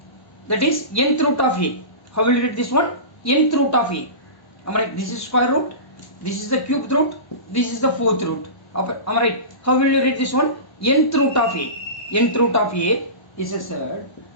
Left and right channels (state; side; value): late; right; 1.1 ms